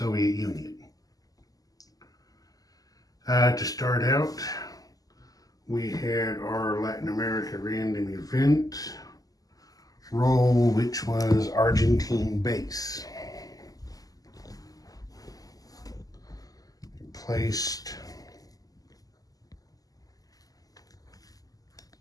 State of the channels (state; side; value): late; right; 0.17 ms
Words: Union. To start out, we had our Latin America random event roll, which was Argentine base. Placed